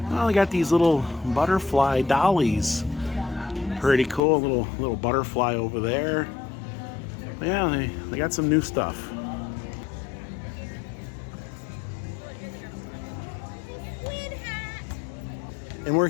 Well, they got these little butterfly dollies. Pretty cool, little butterfly over there. Yeah, they got some new stuff. And we're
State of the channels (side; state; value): right; drops out; at 4.2 s